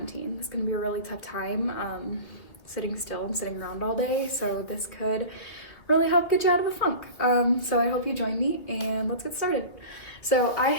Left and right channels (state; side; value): late; right; 2.5 ms